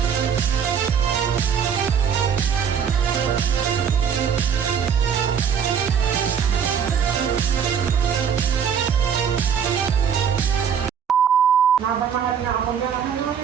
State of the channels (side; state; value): left; quieter; 7.5 dB